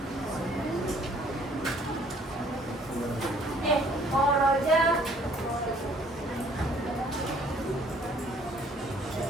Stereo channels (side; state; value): both; normal; correlation 0.59